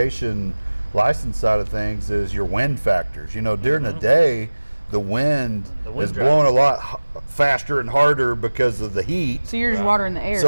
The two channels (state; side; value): inverted; both; correlation -1.00